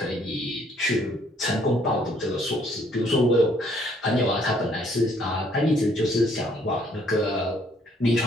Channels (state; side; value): normal; both; correlation 0.64